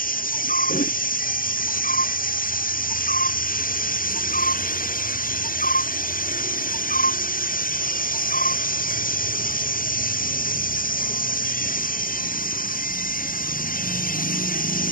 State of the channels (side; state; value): right; late; 0.41 ms